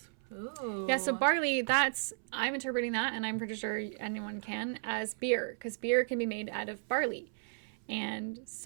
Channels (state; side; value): silent; left; 55 dB below the other